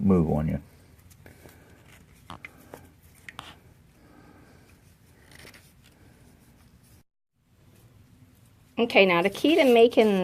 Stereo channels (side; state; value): both; identical; correlation 1.00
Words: move on you. Okay, now the key to